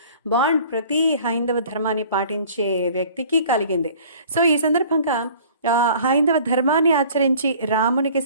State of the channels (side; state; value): both; inverted; correlation -0.49